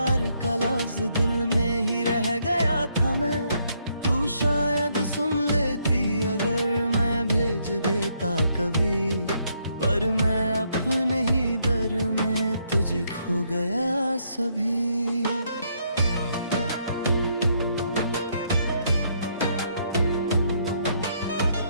का लफ्ज दिल में ही रह गया था मैं। तू शायद सुन लेती अगर मैं भेज देता कभी, पर मैं अपने ही दर में तुझे खो गया सभी।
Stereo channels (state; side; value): inverted; both; correlation -0.73